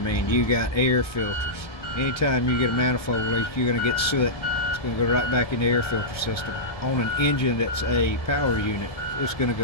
you got air filters. Anytime you get a manifold leak, you're going to get soot. It's going to go right back in the air filter system. On an engine that's a power unit, it's going to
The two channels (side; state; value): right; late; 1.2 ms